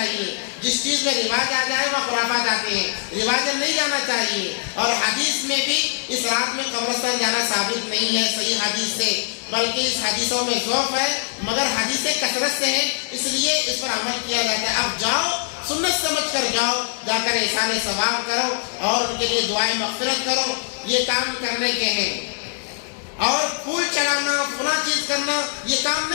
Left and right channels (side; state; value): right; silent; digital silence